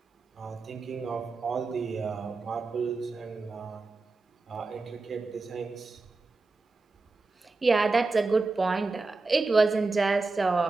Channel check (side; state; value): left; quieter; 3.7 dB